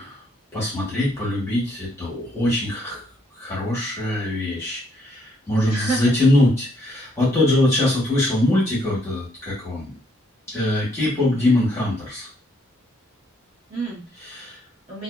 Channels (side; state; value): both; normal; correlation 0.70